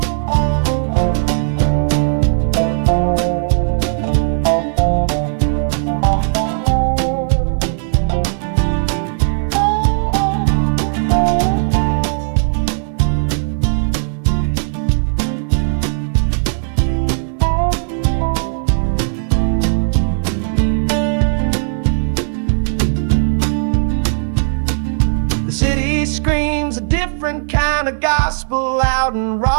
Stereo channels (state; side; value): silent; left; digital silence